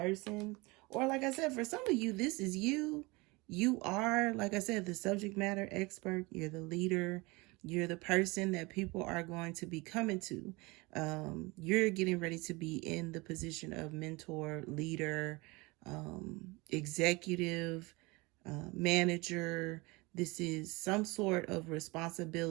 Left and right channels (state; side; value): quieter; left; 24.5 dB